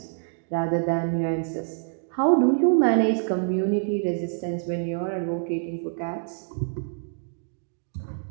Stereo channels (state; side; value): silent; left; digital silence